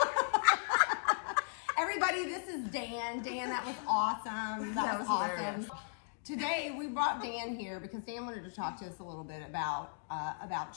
Everybody, this is Dan. Dan, that was awesome. That was awesome. Hilarious. Today we brought Dan here because Dan wanted to talk to us a little bit about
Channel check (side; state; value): right; silent; digital silence